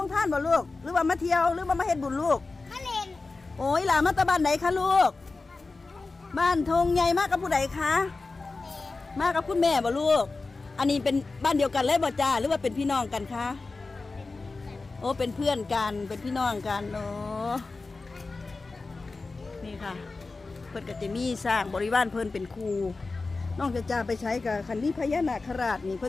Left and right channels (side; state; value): right; quieter; 3.7 dB